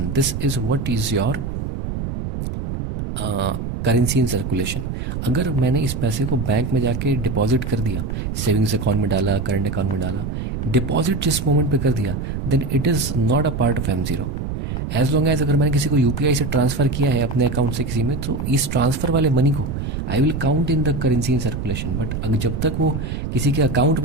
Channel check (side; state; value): right; noise; rumble, 4 dB below the sound